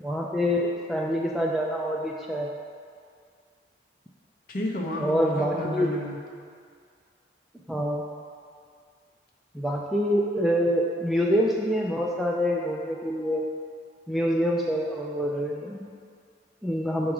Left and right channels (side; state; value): both; normal; correlation 0.70